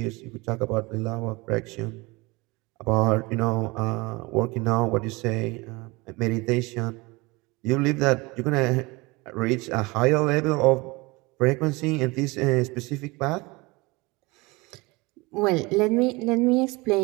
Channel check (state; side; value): quieter; left; 24.4 dB